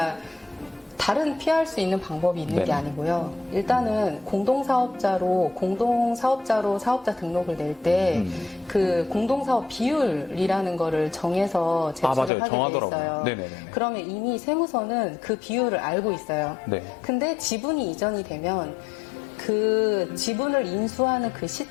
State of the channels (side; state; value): right; drops out; at 12.3 s